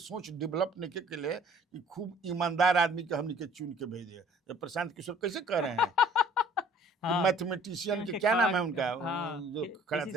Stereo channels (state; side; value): normal; both; correlation 0.54